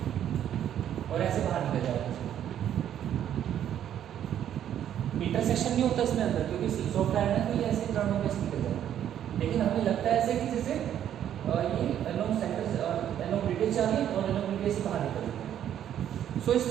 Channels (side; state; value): left; quieter; 10.4 dB